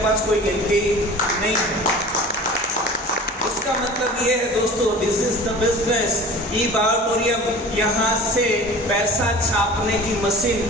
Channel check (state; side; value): normal; both; correlation 0.40